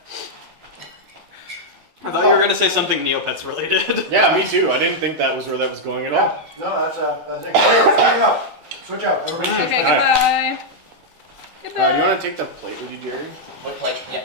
I thought you were gonna say something Neopets related. Yeah, me too. I didn't think that was where that was going at Yeah. all. No, that's the thing. Switch out. Switch out. Everybody switch Okay, back. goodbye. Goodbye. Do you want to take the plate with you, Jerry? Look like, yeah,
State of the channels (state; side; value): late; left; 12 ms